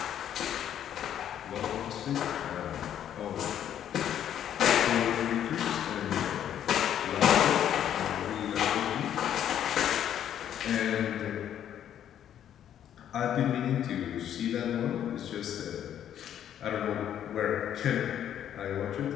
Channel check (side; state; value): right; quieter; 10.2 dB